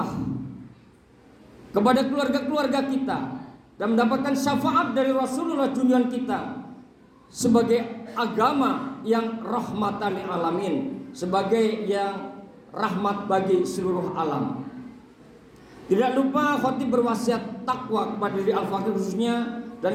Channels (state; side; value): identical; both; correlation 1.00